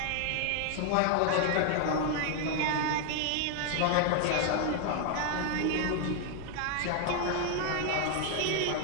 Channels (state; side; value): different; both; correlation 0.00